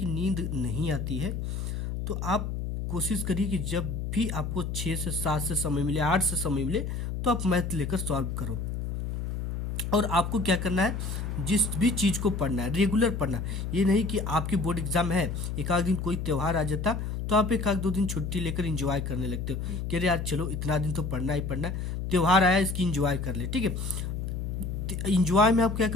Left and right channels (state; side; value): noise; left; hum, 3 dB below the sound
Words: नींद नहीं आती है। तो आप कोशिश करिए कि जब भी आपको 6 से 7 से समय मिले, 8 से समय मिले, तो आप मैथ लेकर सॉल्व करो। और आपको क्या करना है, जिस भी चीज़ को पढ़ना है रेगुलर पढ़ना। ये नहीं कि आपकी बोर्ड एग्जाम है, एक आध दिन कोई त्यौहार आ जाता तो आप एक आध 2 दिन छुट्टी लेकर इंजॉय करने लगते हो कि अरे यार चलो इतना दिन तो पढ़ना ही पढ़ना है, त्यौहार आया इसकी इंजॉय कर ले, ठीक है। इंजॉय में आप क्या